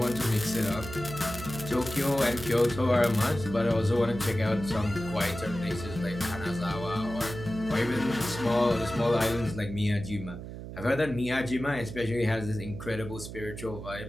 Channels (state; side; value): noise; right; hum, 10 dB below the sound